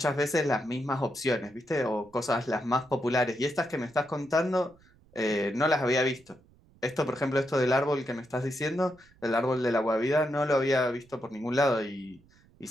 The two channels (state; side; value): noise; right; rumble, 29 dB below the sound